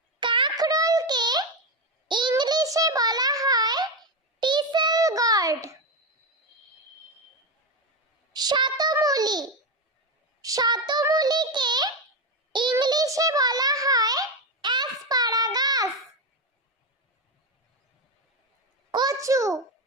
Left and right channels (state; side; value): normal; both; correlation 0.12